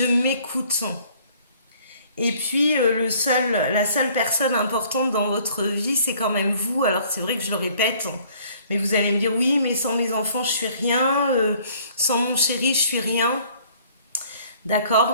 m'écoute. Et puis la seule personne importante dans votre vie, c'est quand même vous. Alors c'est vrai que je le répète, mais vous allez me dire oui, mais sans mes enfants, je suis rien. Sans mon chéri, je suis rien. D'accord.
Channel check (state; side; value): inverted; both; correlation -0.58